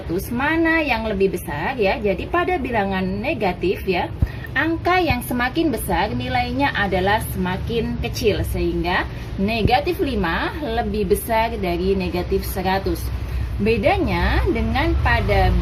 mana yang lebih besar ya? Jadi pada bilangan negatif ya, angka yang semakin besar nilainya adalah semakin kecil. Sehingga negatif 5 lebih besar dari negatif 100. Bedanya dengan pada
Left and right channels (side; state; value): both; identical; correlation 1.00